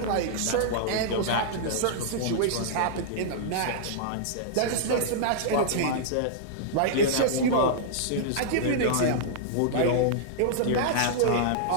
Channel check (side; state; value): both; different; correlation -0.02